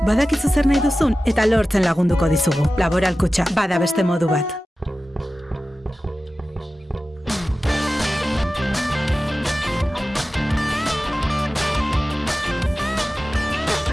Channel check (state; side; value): normal; both; correlation 0.95